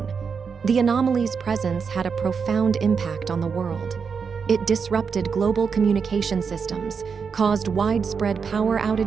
The anomaly's presence had a profound impact on the world. It disrupted global communication systems, caused widespread power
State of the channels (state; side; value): quieter; left; 5.9 dB